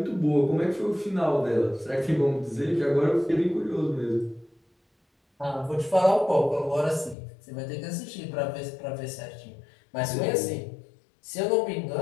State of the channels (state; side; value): drops out; right; at 7.2 s